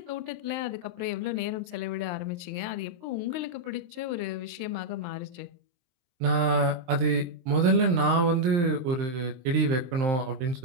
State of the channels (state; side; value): late; left; 23 ms